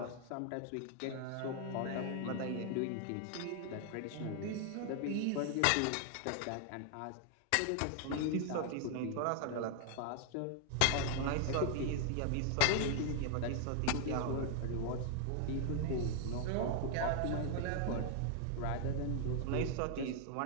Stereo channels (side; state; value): both; different; correlation 0.00